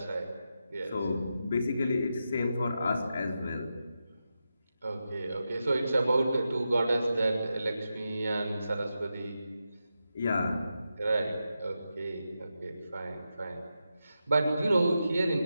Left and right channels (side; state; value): both; inverted; correlation -0.89